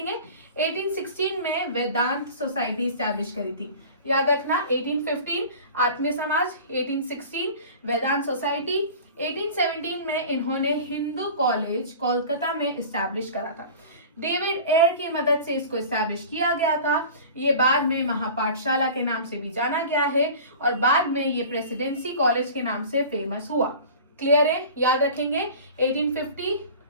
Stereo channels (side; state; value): both; inverted; correlation -0.40